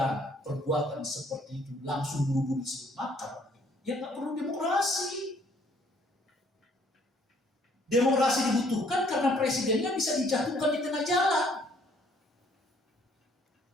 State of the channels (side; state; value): both; normal; correlation 0.63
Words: perbuatan seperti itu langsung buru-buru disebut makar, ya nggak perlu demokrasi. Demokrasi dibutuhkan karena presidennya bisa dijatuhkan di tengah jalan.